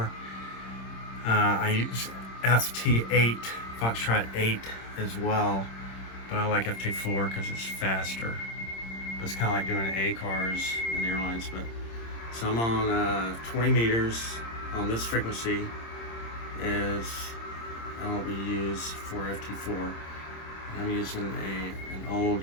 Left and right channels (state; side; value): late; right; 26 ms